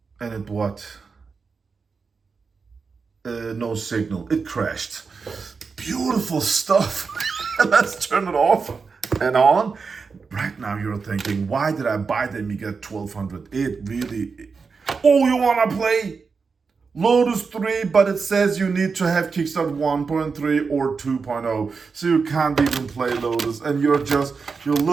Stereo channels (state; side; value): quieter; left; 5.0 dB